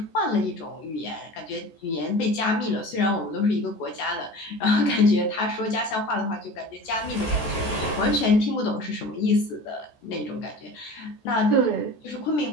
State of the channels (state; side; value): late; right; 14 ms